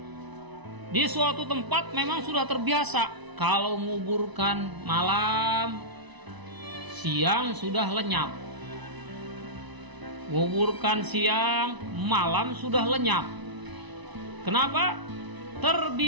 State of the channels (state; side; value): late; left; 1.0 ms